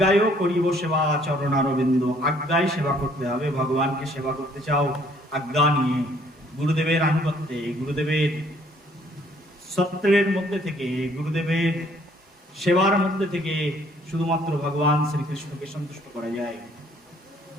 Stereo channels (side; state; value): both; normal; correlation 0.62